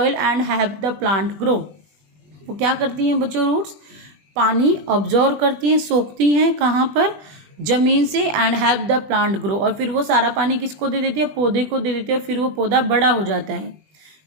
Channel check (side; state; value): left; late; 20 ms